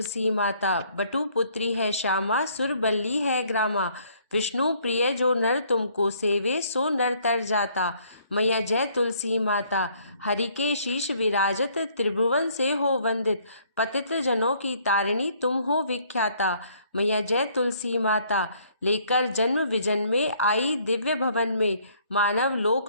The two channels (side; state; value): both; inverted; correlation -0.63